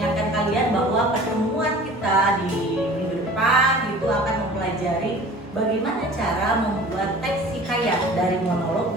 kalian bahwa pertemuan kita di minggu depan itu akan mempelajari bagaimana cara membuat teks hikayat dari monolog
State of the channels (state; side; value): normal; both; correlation 0.44